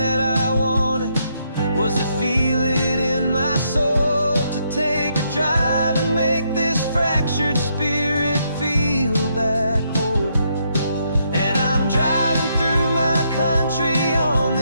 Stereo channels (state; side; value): inverted; both; correlation -0.76